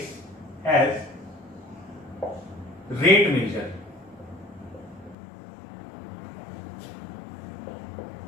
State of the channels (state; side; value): drops out; right; at 5.2 s